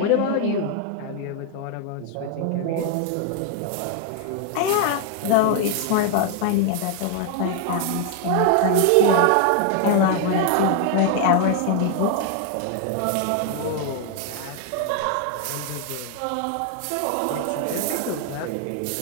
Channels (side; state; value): both; different; correlation 0.00